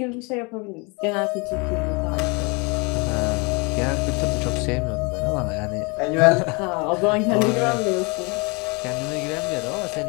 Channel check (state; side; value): quieter; right; 29.9 dB